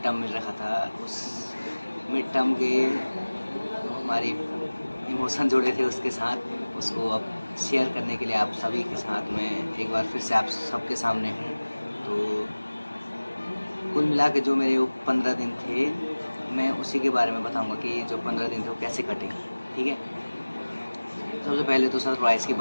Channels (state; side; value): inverted; both; correlation -1.00